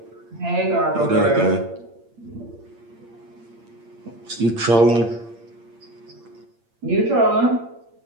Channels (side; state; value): left; late; 8.7 ms